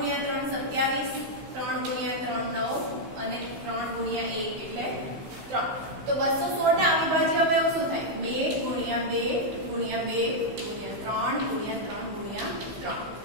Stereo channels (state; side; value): late; left; 15 ms